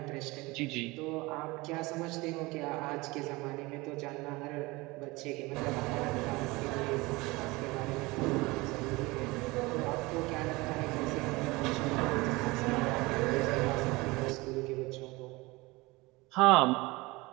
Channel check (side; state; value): left; quieter; 22.7 dB